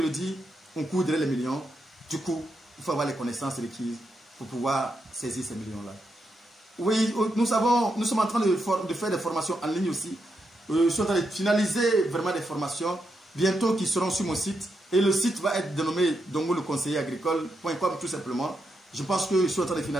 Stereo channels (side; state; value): both; normal; correlation 0.83